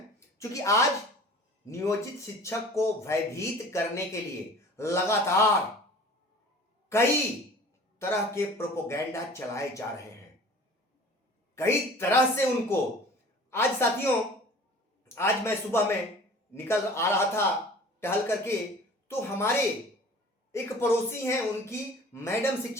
क्योंकि आज नियोजित शिक्षक को भयभीत करने के लिए लगातार कई तरह के प्रोपोगेंडा चलाए जा रहे हैं, कई तरह से उनको। आज साथियों, आज मैं सुबह में निकल आ रहा था टहल करके, तो हमारे एक पड़ोसी हैं, उनकी मैडम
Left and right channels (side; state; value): both; normal; correlation 0.45